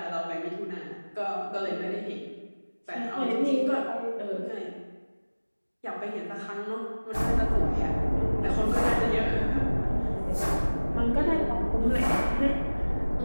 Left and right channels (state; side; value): inverted; both; correlation -1.00